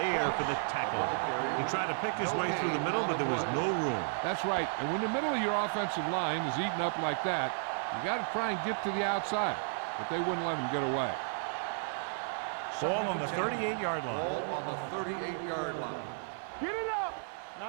for the tackle. He tried to pick his way through the middle, but there was no room. That's right. And when the middle of your offensive line is eaten up like that, you got to try and get to the outside. But they wouldn't let him get away. Ball on the 38-yard line. Ball on the 38-yard line. Get it up.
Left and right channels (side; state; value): left; silent; 56 dB below the other